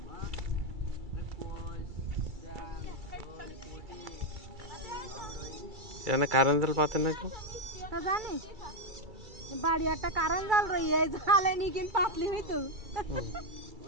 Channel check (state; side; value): late; left; 2.3 ms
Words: এখানে কারেন্ট জাল পাতে না কেউ? তা জানিস বাড়ি একটা কারেন্ট জাল রই এই জালে নি কিন পাতলি হইতো। হুম।